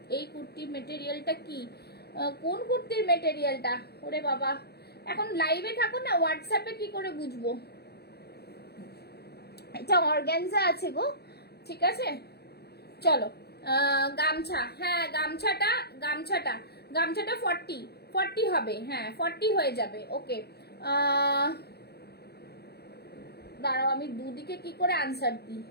এই কুর্তি মেটেরিয়ালটা কি, কোন কুর্তির মেটেরিয়ালটা, ওরে বাবা, এখন লাইভে থাকো না, হোয়াটসঅ্যাপে কি করে বুঝবো। এটা অর্গানজা আছে গো, ঠিক আছে। চলো গামছা, হ্যাঁ গামছাটা 40 হবে, হ্যাঁ 40 হয়ে যাবে, ওকে। দাঁড়াও আমি দুদিকে কি করে আনসার দিই।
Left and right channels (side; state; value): right; late; 0.47 ms